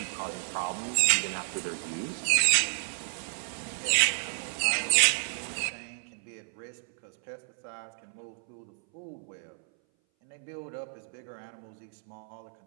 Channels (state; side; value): silent; left; 57 dB below the other